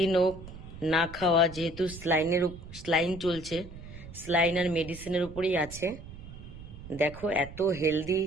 ও না খাওয়া, যেহেতু স্লাইন চলছে, স্লাইন আর মেডিসিনের উপরেই আছে। দেখো এত হেলদি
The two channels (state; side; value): noise; right; rumble, 14 dB below the sound